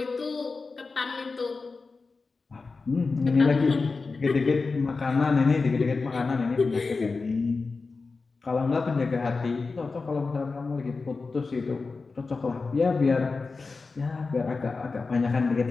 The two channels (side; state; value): right; quieter; 4.2 dB